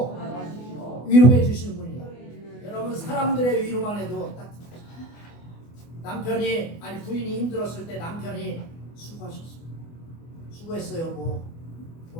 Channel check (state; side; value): late; right; 24 ms